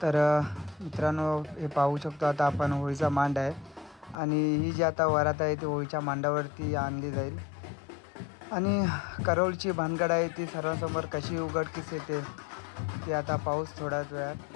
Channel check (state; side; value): drops out; right; at 4.2 s